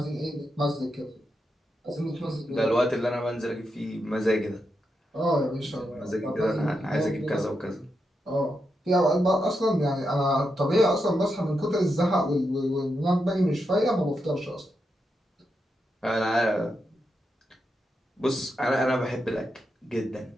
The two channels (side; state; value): both; normal; correlation 0.85